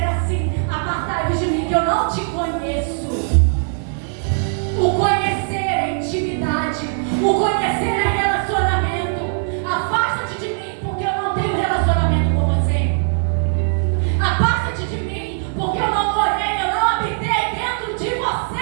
assim: apartai-vos de mim, que eu não te conheço. O conhecer é intimidade, o conhecer é relacionamento. Afasta-te de mim, porque eu não tenho relacionamento com você. Afasta-te de mim, porque eu não morei, eu não habitei dentro de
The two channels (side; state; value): left; silent; 57 dB below the other